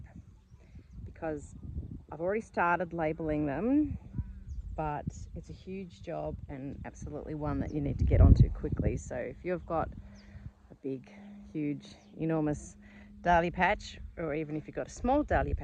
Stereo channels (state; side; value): identical; both; correlation 1.00